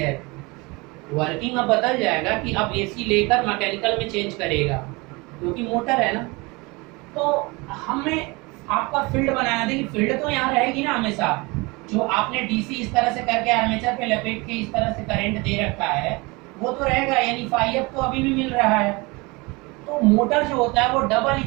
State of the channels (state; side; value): quieter; left; 25.5 dB